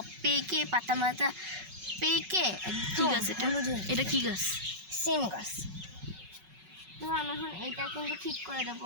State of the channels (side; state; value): left; late; 5.4 ms